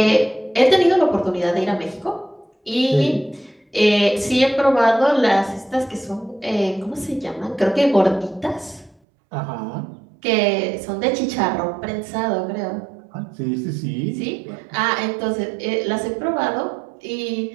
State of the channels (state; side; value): drops out; left; at 9.0 s